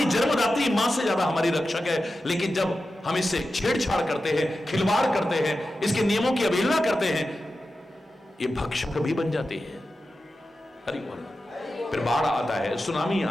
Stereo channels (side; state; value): both; normal; correlation 0.92